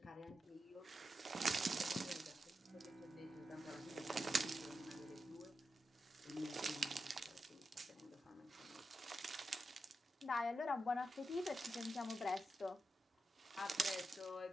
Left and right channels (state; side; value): normal; both; correlation 0.88